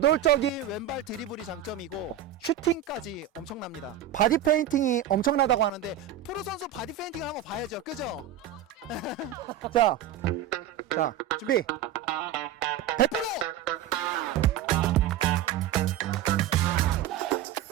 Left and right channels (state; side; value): quieter; left; 9.8 dB